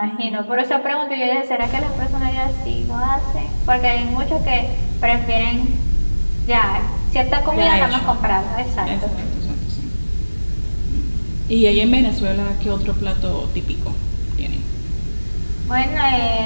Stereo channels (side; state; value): both; inverted; correlation -1.00